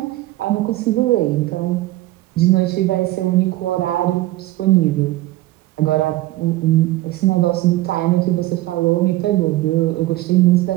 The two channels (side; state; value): left; quieter; 17.1 dB